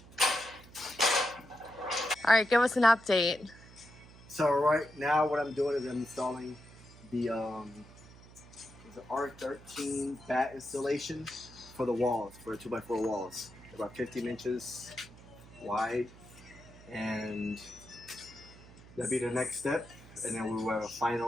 All right, give us an update. So right now, what I'm doing is I'm installing the R13 bat installation for the walls, for the 2x4 walls. They're about 15 inches wide, and that'll be the next step. And then we will have a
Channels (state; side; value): noise; right; hum, 20 dB below the sound